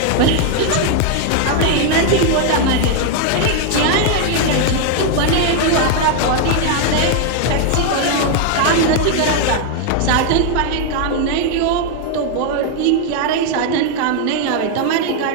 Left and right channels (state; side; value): different; both; correlation 0.00